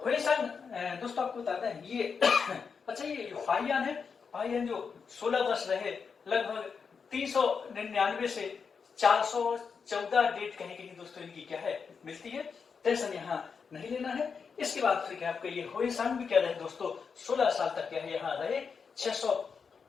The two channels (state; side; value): quieter; right; 5.8 dB